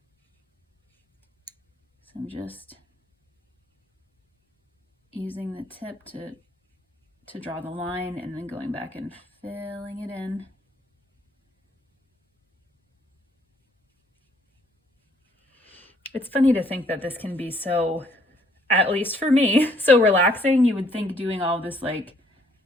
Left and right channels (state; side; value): normal; both; correlation 0.65